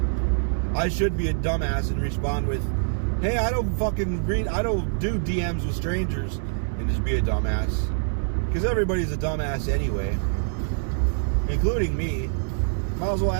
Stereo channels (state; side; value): silent; left; digital silence